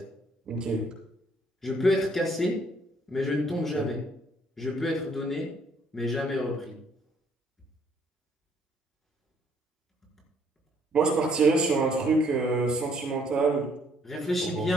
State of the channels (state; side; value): normal; both; correlation 0.66